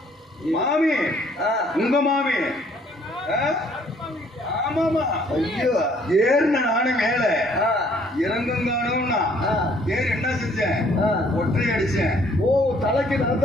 மாமி உங்க மாமி. ஆமாமா. ஐயோ, ஏறுன நானும் மேல இறங்கும் காணும்னா ஏறு என்ன செஞ்சேன்? ஒற்றை அடிச்சேன். ஓ, தலைக்கு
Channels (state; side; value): normal; both; correlation 0.62